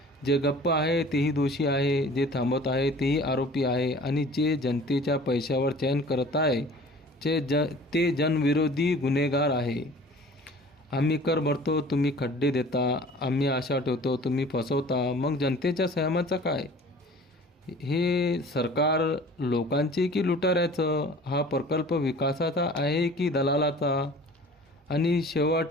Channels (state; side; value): normal; both; correlation 0.46